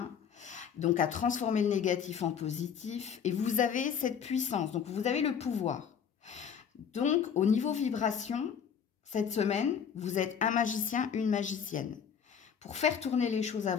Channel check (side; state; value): right; quieter; 7.5 dB